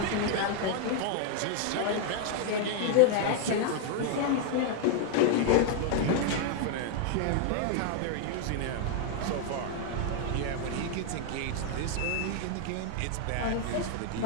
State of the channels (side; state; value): both; different; correlation 0.00